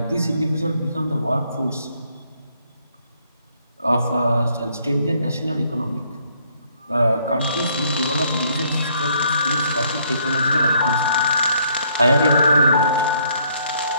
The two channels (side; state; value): both; inverted; correlation -0.67